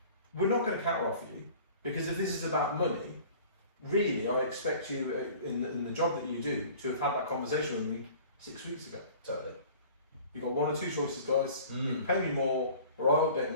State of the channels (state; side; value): inverted; both; correlation -0.46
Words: we're not going to counter offer you, because if this is about money, really, I expect you in the job that you do to have had that conversation with me 6 weeks ago. Totally. You've got 1 or 2 choices, guys. You can pay me more, or I'll update